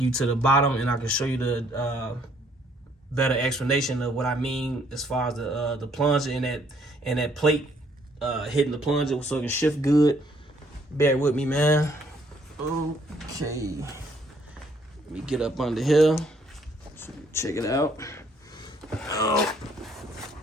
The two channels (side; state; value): both; normal; correlation 0.65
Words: you to the bottom, and I can show you the better explanation of what I mean as far as the plunger and that plate hitting the plunger so it can shift good. Bear with me, man. Okay, let me get up under here. So check it out.